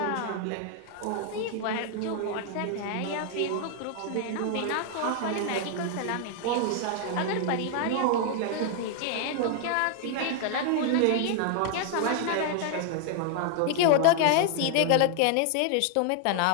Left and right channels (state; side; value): different; both; correlation 0.00